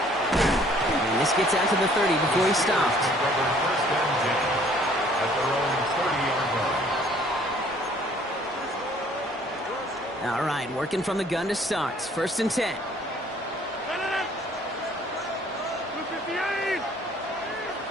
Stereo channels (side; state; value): both; normal; correlation 0.58